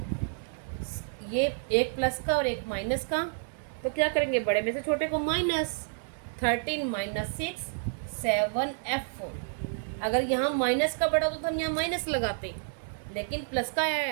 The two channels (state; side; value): silent; left; 58 dB below the other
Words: ये एक प्लस का और एक माइनस का, तो क्या करेंगे, बड़े में से छोटे को माइनस, 13 - 6 7F। अगर यहाँ माइनस का बड़ा होता तो हम यहाँ माइनस लगाते, लेकिन प्लस का